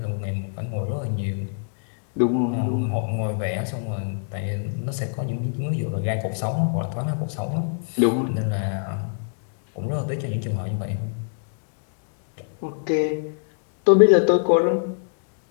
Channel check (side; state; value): right; silent; digital silence